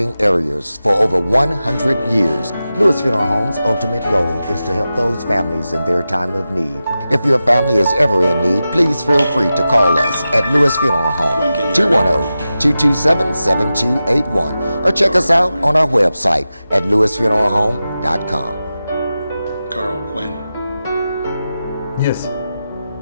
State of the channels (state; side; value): inverted; both; correlation -0.93